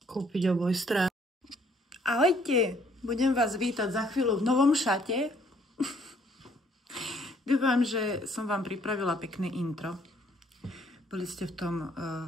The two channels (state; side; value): normal; both; correlation 0.64